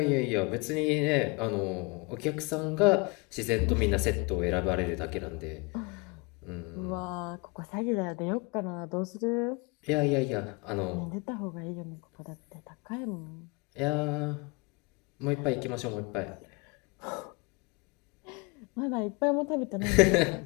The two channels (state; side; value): quieter; right; 28.8 dB